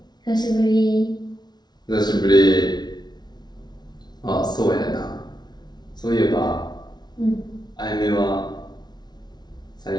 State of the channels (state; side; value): late; right; 0.20 ms